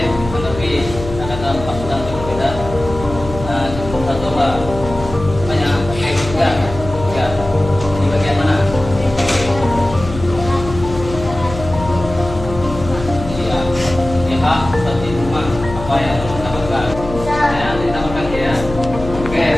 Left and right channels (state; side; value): noise; left; hum, 10 dB below the sound